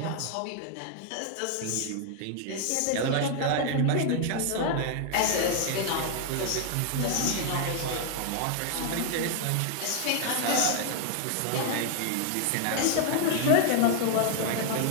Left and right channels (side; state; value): both; different; correlation 0.00